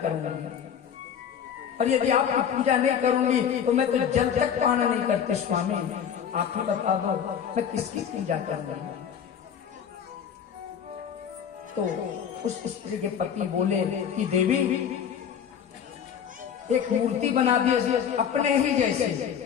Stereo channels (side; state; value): right; quieter; 8.2 dB